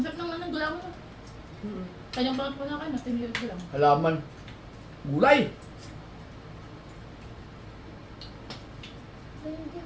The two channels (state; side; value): identical; both; correlation 1.00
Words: naman ng gulaw mo. Kanyang bakit po na kayo, mas tinilid ko lang. Halaman. Gulay.